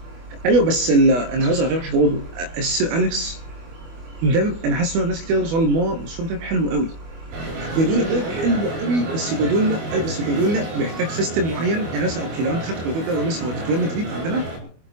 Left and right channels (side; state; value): left; late; 24 ms